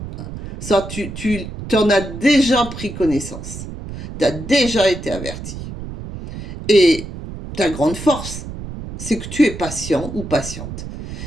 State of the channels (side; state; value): right; noise; rumble, 10 dB below the sound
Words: Ça, tu en as déjà pris connaissance. Tu as déjà été averti. Et ta grande force, c'est que tu es patient ou patiente.